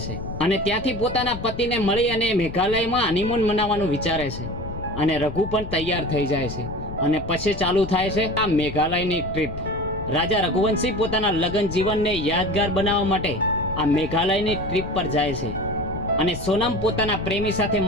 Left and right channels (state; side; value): noise; left; rumble, 10 dB below the sound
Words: છે અને ત્યાંથી પોતાના પતિને મળી અને મેઘાલયમાં હનીમૂન મનાવવાનું વિચારે છે. અને રઘુ પણ તૈયાર થઈ જાય છે અને પછી ચાલુ થાય છે આ મેઘાલયની ટ્રીપ. રાજા રઘુવંશી પોતાના લગ્ન જીવનને યાદગાર બનાવવા માટે આ મેઘાલયની ટ્રીપ પર જાય છે અને સોનમ પોતાના પ્રેમી સાથે